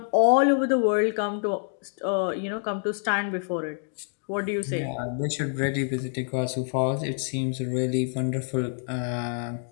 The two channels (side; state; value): right; silent; 60 dB below the other